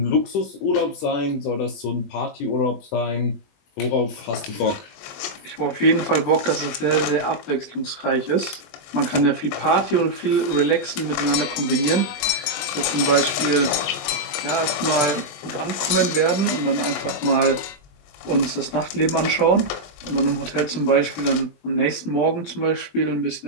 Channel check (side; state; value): right; late; 20 ms